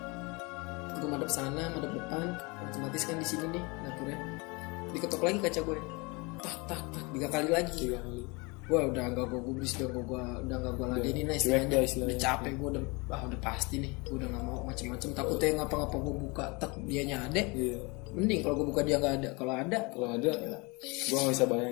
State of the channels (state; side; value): quieter; right; 27.9 dB